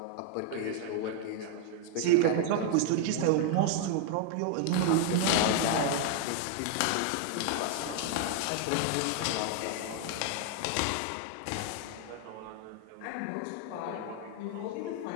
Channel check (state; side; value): different; both; correlation 0.00